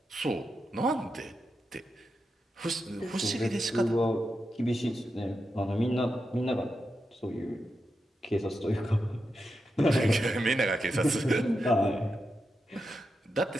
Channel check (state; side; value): normal; both; correlation 0.88